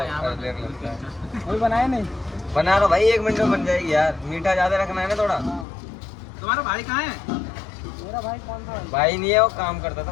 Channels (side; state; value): right; drops out; at 5.7 s